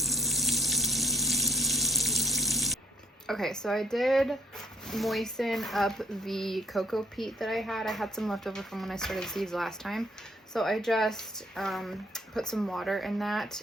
Okay, so I did moisten up the cocoa peat that I had. I had some left over from when I started seeds last time. So I just put some water in that,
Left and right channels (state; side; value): normal; both; correlation 0.64